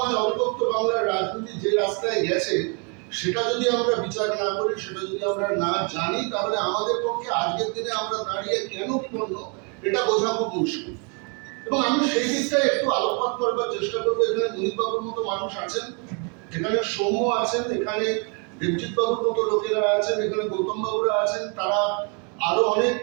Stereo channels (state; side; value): quieter; left; 35.8 dB